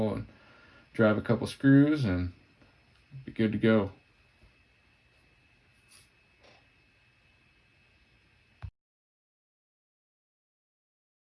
and drive a couple screws and be good to go.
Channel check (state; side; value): identical; both; correlation 1.00